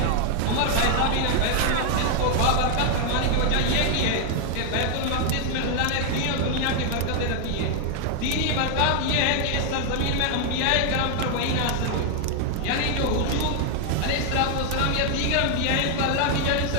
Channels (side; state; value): both; different; correlation 0.00